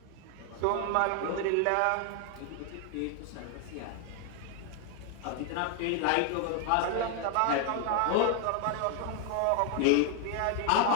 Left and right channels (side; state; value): both; different; correlation 0.01